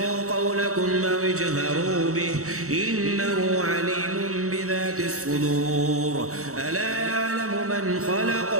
قولكم أو اجهروا به إنه عليم بذات الصدور، ألا يعلم من خلق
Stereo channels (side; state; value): left; late; 0.64 ms